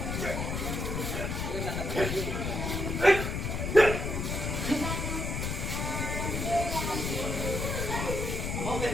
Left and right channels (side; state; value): left; noise; rumble, 2 dB below the sound